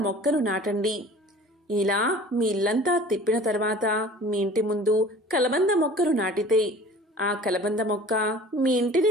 మొక్కను నాటండి. ఇలా మీ ఇల్లంతా తిప్పిన తర్వాత మీ ఇంటి ముందు కలబంద మొక్కను నాటితే ఆ కలబంద మొక్క మీ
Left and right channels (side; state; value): both; normal; correlation 0.45